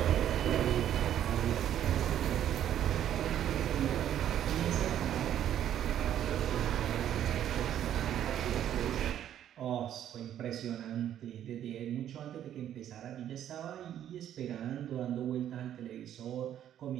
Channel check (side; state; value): left; quieter; 10.8 dB